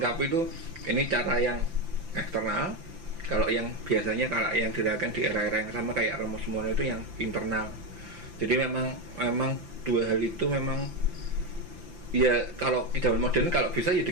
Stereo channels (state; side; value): late; left; 5.9 ms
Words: itu ini cara yang eksternal. Kalau yang biasanya kalau yang dilakukan di era-era yang sama kayak Romo Sumono itu yang internal. Jadi memang dua hal itu memang ya, kalau di zaman modern kalau bisa ya